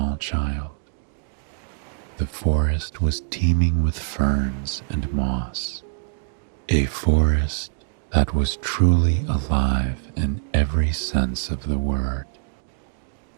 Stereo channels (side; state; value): left; silent; digital silence